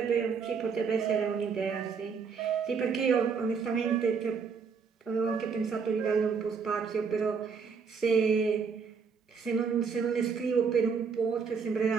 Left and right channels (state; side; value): quieter; left; 5.8 dB